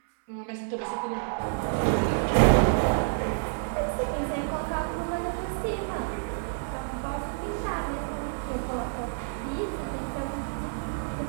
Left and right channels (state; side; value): silent; left; 59 dB below the other